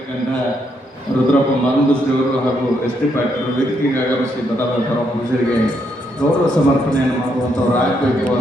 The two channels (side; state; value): both; normal; correlation 0.76